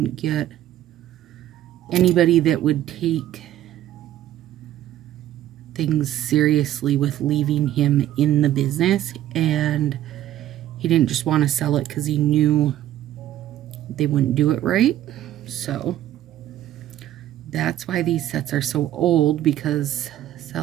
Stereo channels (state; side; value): quieter; left; 12.5 dB